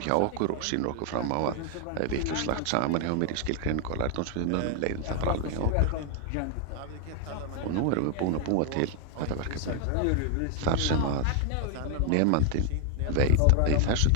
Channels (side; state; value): both; different; correlation 0.00